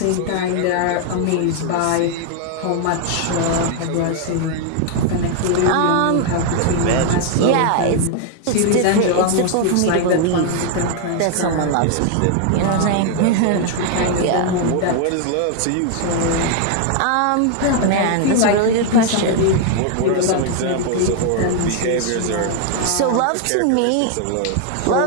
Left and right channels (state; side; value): different; both; correlation 0.00